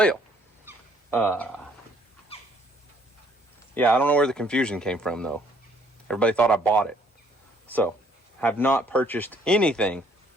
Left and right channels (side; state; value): both; normal; correlation 0.63